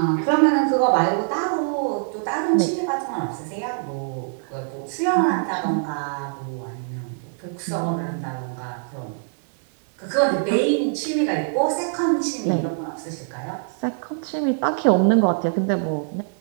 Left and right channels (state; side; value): silent; left; 63 dB below the other